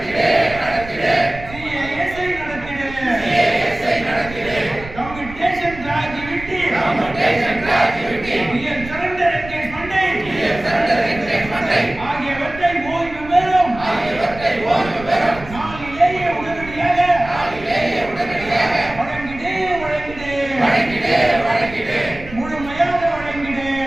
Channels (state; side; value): noise; right; rumble, 14 dB below the sound